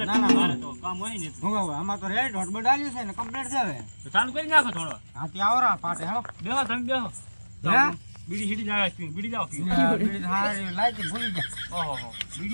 ના, ના, મારે તો કામ હોય ને હું હવે આમાં તો રેડ હોટ બડાલ્યું છે ને કમ્પ્લીટ છે હવે તો ચાલુ કરી નાખો થોડો હાથી આવરા પાટે હેલો બેહો તમે બેહો હે? બીડી સીડી જાય બીડી જાવ બીડી હારી લાઈટ ભૂલી ગયા ઓહો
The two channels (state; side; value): inverted; both; correlation -1.00